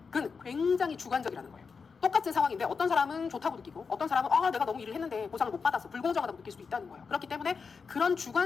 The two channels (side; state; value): right; quieter; 5.3 dB